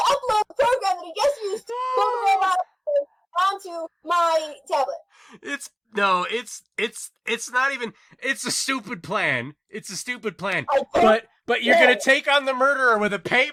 upload the program that he just used to pull the robot onto my tablet? It's not even. It's a stupid plan. It's a stupid plan. I don't But you're gonna take on the murderer with a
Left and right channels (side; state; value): both; identical; correlation 1.00